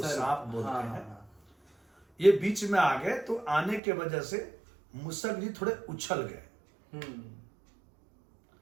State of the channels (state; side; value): drops out; left; at 3.8 s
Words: सांप बोलते हैं। ये बीच में आ गए, तो आने के वजह से मूषक जी थोड़े उछल गए।